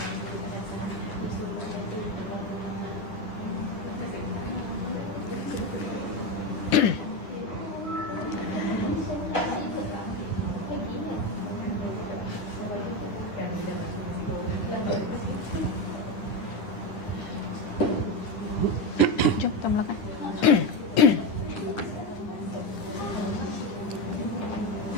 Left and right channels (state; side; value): late; right; 10 ms